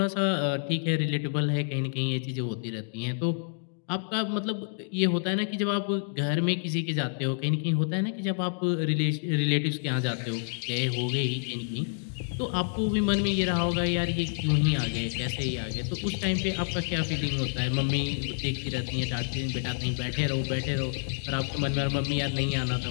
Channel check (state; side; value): silent; right; digital silence